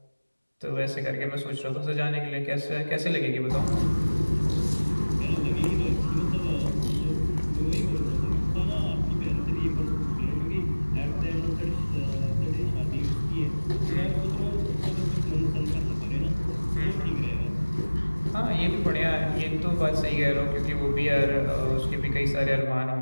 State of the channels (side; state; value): both; inverted; correlation -1.00